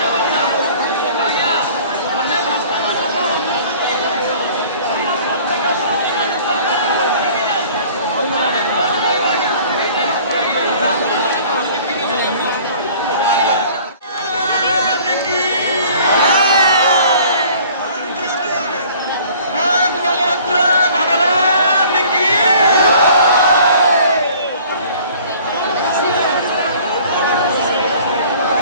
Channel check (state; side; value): inverted; both; correlation -0.50